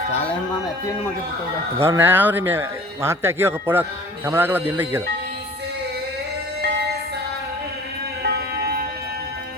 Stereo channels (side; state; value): both; normal; correlation 0.46